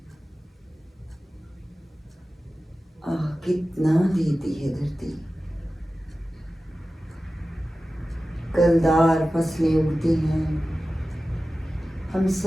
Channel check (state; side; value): normal; both; correlation 0.95